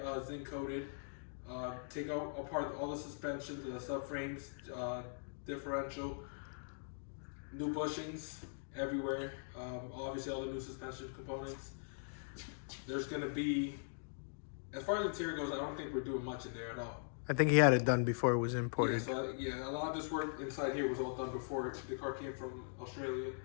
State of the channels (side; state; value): right; silent; digital silence